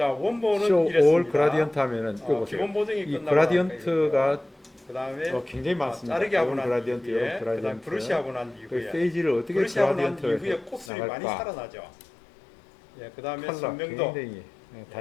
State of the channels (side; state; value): right; drops out; at 10.9 s